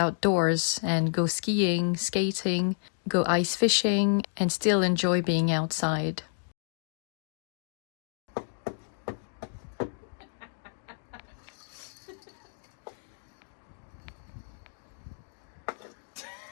and go skiing, skating, go ice fishing, and still enjoy being outside. I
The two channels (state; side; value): silent; right; digital silence